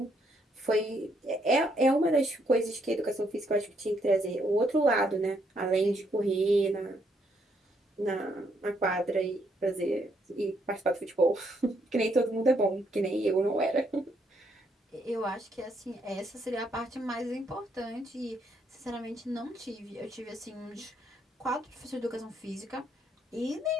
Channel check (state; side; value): normal; both; correlation 0.73